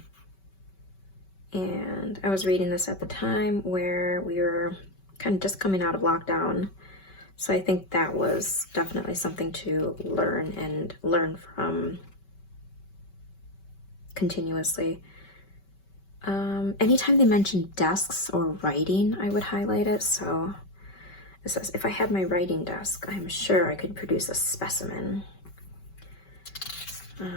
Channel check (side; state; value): right; late; 5.2 ms